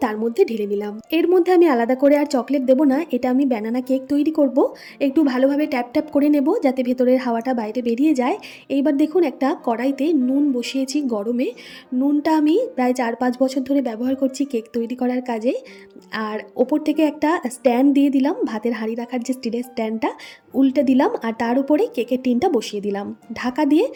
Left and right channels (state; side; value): identical; both; correlation 1.00